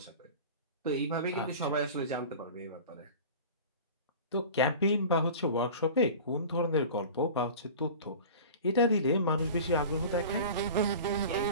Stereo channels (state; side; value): inverted; both; correlation -0.37